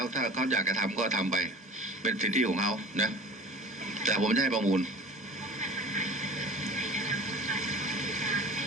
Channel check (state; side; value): normal; both; correlation 0.40